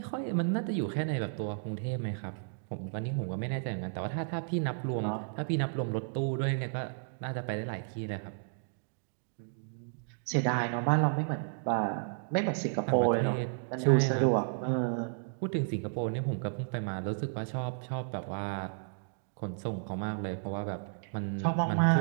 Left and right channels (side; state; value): left; silent; digital silence